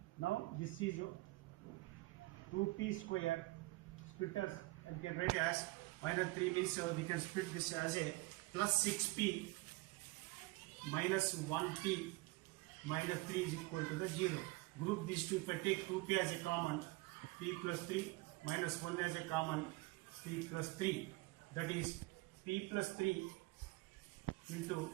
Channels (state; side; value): quieter; left; 22.6 dB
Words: Now this is 2p square, splitters and can write as minus 3 means we can split this as a plus 6p minus 1p minus 3 is equal to the 0. Group these two. If I take 2p as a common, p plus 3 minus 1 as a common, p plus 3. That is p plus 3 into